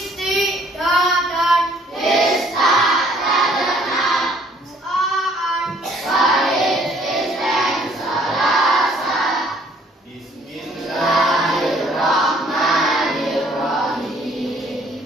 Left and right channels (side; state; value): both; normal; correlation 0.61